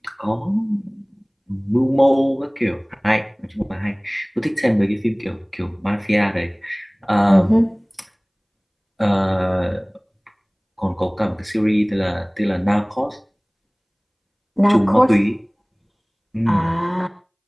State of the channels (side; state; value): both; identical; correlation 1.00